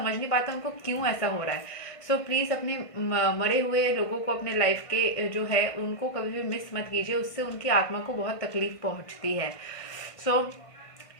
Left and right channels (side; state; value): right; late; 1.5 ms